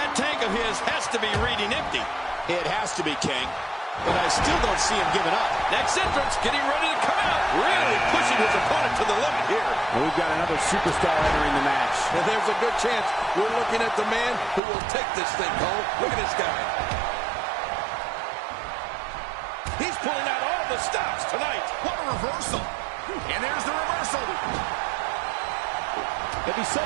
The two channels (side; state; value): left; drops out; at 14.6 s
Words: tank of his has to be reading empty. It has to be, King. But I still don't see him giving up. Next entrance, getting ready to come out. Really pushing his opponent to the limit here. And we've got another superstar entering the match. And there's a good chance we're looking at the man who will take this thing home. Look at this guy. He's pulling out all the stops tonight. What a reversal. And there's the reversal. If he